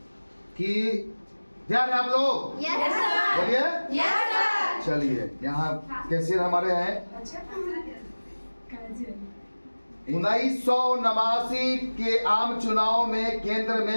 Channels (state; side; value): inverted; both; correlation -1.00